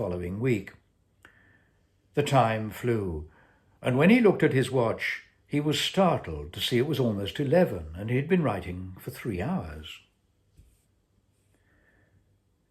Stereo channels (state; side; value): identical; both; correlation 1.00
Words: week. The time flew, and when he looked at his watch, he was startled to see it was almost 11, and he had been writing for 3 hours.